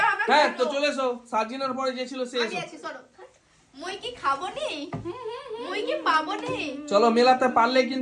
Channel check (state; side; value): identical; both; correlation 1.00